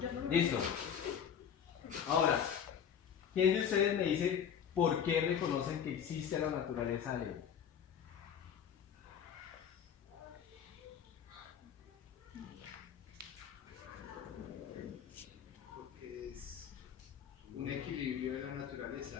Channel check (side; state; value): right; quieter; 8.2 dB